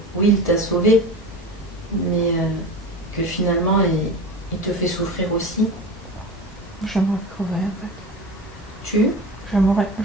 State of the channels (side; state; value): both; normal; correlation 0.30